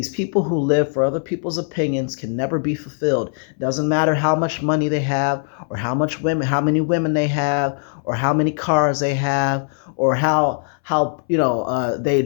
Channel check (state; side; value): silent; right; 64 dB below the other